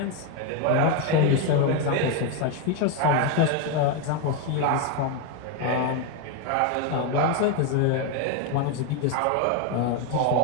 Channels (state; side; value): different; both; correlation 0.02